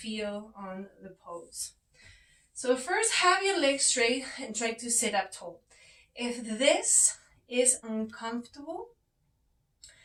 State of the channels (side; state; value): both; identical; correlation 1.00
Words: on the pose. So first, have your legs straight and try to sit up tall. If this is uncomfortable,